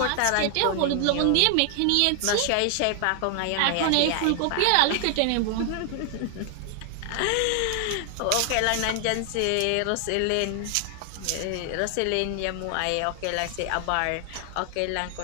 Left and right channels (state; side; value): different; both; correlation 0.00